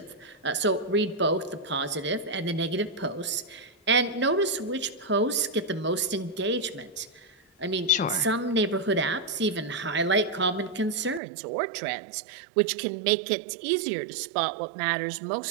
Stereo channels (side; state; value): left; drops out; at 11.2 s